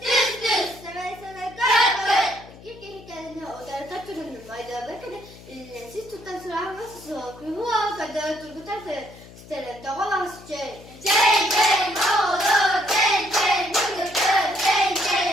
düz düz. Seve seve kara kara. İki kendine odarda turunun mayda bakın. Siz tutan sıra vasısı. Kuyuva kadar turgutarsa. Stere dağılas çey. Çey çey olur. Çey çey olur. Çey çey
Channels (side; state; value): left; noise; hum, 19 dB below the sound